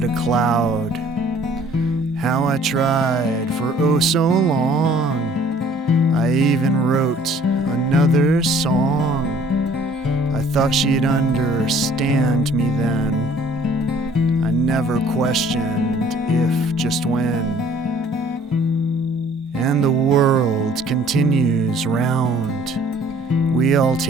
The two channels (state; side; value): normal; both; correlation 0.55